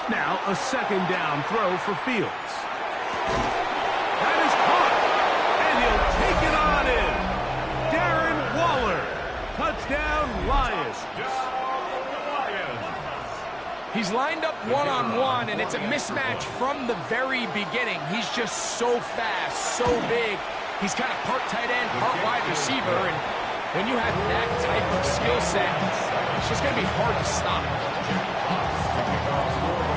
Now a 2nd down throw for Fields. That is caught. And he'll take it on in. Darren Waller. Touchdown, Lions. He's lined up one-on-one, and it's a mismatch from the very beginning. He's just so fast, so big. He's kind of part tight end, part wide receiver, and when you have that type of skill set, it's just going to be hard to stop.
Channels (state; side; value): identical; both; correlation 1.00